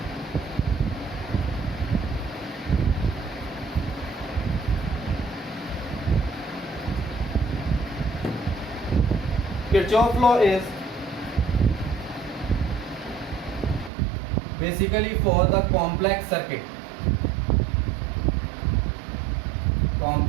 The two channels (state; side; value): drops out; left; at 13.9 s